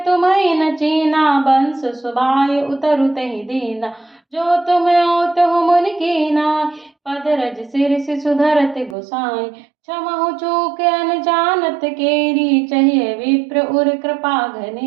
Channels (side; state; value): left; drops out; at 9.0 s